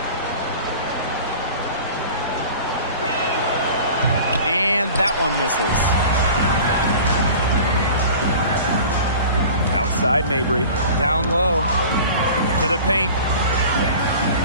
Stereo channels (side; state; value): both; inverted; correlation -0.41